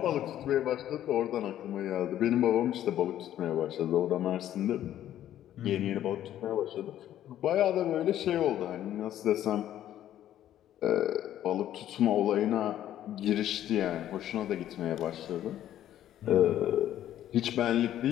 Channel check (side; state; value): right; quieter; 11.9 dB